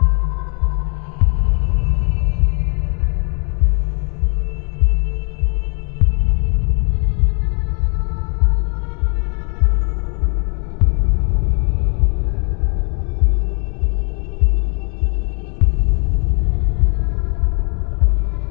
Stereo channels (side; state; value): right; quieter; 39.6 dB